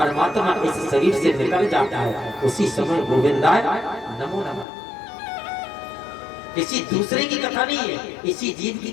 इस शरीर से निकल जाता है, उसी समय गोविंदाय नमो नमः। किसी दूसरे की कथा नहीं है, इसी जीव की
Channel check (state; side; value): drops out; right; at 4.7 s